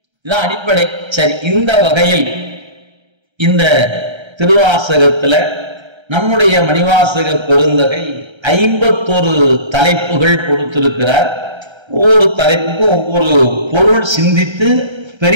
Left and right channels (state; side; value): late; left; 1.3 ms